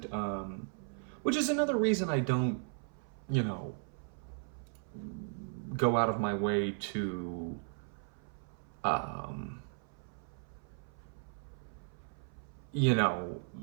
Which is another reason I don't, go out of my way to,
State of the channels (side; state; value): left; silent; 53 dB below the other